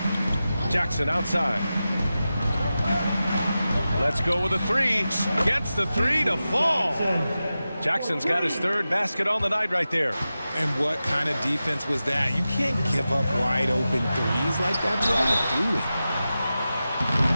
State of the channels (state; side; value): inverted; both; correlation -0.93